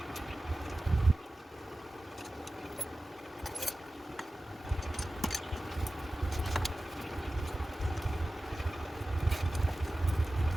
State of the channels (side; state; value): both; normal; correlation 0.96